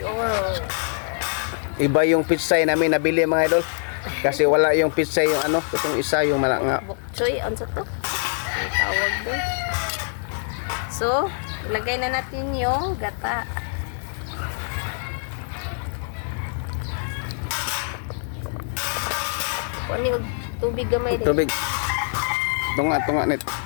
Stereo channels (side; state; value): right; silent; digital silence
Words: Iba yung pitsay namin nabili mga idol. Kasi wala yung pizza yung ano, itong isa yung malanga. Bok choy, ano to? Ang tawag doon. So, ilagay na natin yung gata. Kuha yung tubig gamay din. Tubig. Tunga net.